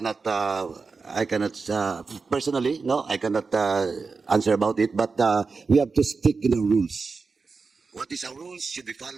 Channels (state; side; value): quieter; left; 4.5 dB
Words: personally, no, I cannot answer about it, but we have to stick in the rules. What is our rules should be